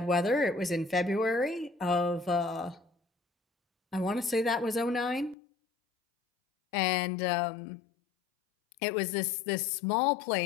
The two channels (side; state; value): right; drops out; at 5.4 s